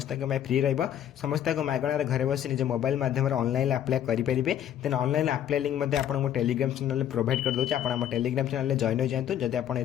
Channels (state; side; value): quieter; right; 10.5 dB